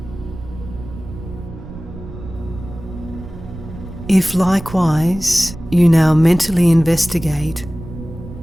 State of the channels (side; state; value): right; noise; rumble, 13 dB below the sound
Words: If likewise you now mentally investigate